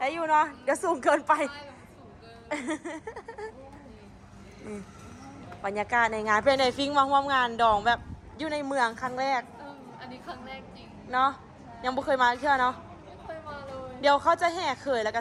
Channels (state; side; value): identical; both; correlation 1.00